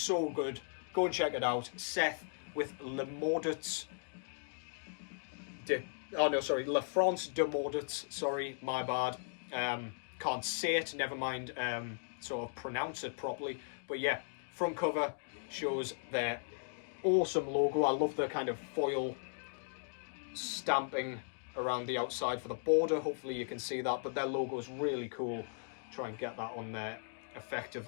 good. Go and check it out. Seth with Le Maudits. La France de Maudits. Sorry, my bad. Can't say it, never mind sort of pronounce it properly. But yeah, front cover shows their awesome logo. I love the kind of foil stamping around the outside for the border. Hopefully you can see that, but their logo is really cool. Try and get that on there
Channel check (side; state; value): right; silent; digital silence